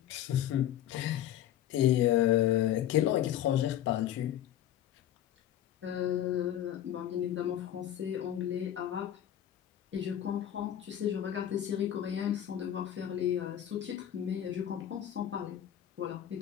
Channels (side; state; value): right; quieter; 11.5 dB